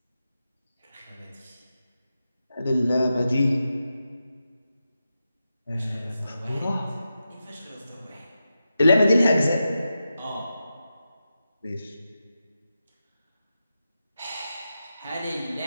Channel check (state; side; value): inverted; both; correlation -0.90